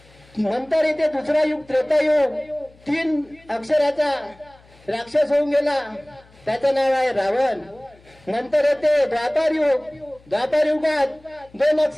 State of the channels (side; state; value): left; noise; hum, 28 dB below the sound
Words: नंतर इथे दुसरा युग त्रेतायुग। 3 अक्षराचा राक्षस होऊन गेला, त्याचं नाव आहे रावण। नंतर येते द्वापार युग। द्वापार युगात 2